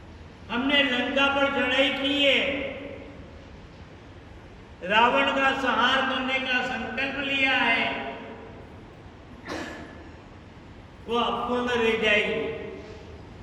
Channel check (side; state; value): both; identical; correlation 1.00